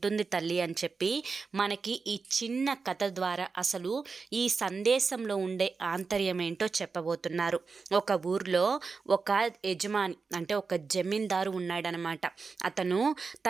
తల్లి అని చెప్పి మనకి ఈ చిన్న కథ ద్వారా అసలు ఈ సందేశంలో ఉండే ఆంతర్యం ఏంటో చెప్పబోతున్నారు. ఒక ఊర్లో ఒక యజమాని అంటే ఒక జమీందారు ఉన్నాడనమాట. అతను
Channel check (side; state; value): left; quieter; 4.7 dB